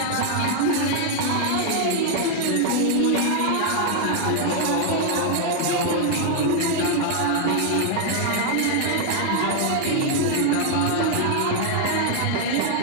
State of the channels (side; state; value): both; different; correlation 0.00